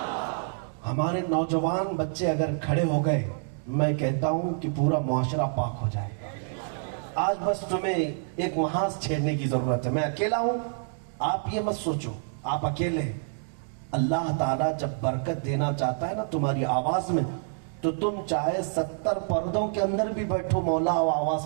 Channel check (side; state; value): left; silent; digital silence